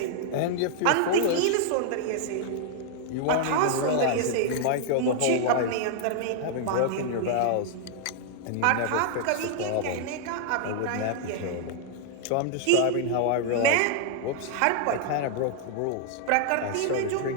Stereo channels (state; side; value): different; both; correlation 0.00